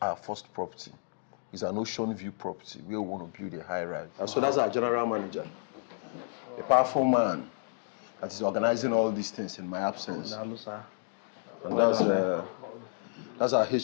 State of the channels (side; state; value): right; silent; digital silence